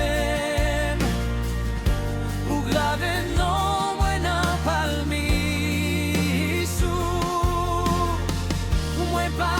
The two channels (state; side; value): identical; both; correlation 1.00